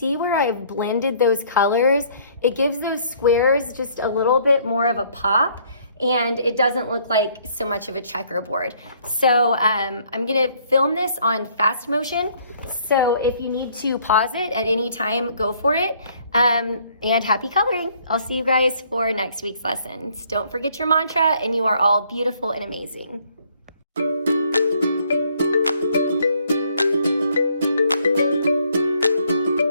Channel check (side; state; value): both; inverted; correlation -0.63